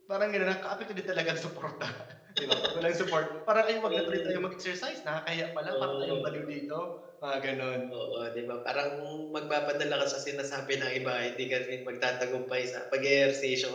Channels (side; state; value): both; identical; correlation 1.00